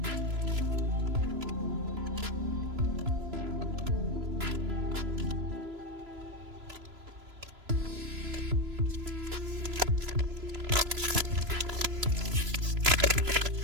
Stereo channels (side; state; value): left; late; 3.0 ms